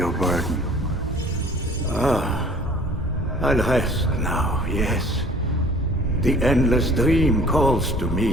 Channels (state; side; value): normal; both; correlation 0.51